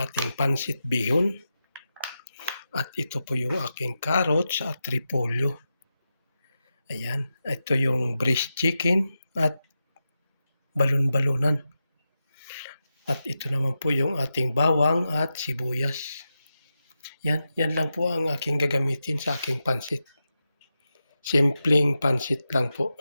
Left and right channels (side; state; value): both; inverted; correlation -0.90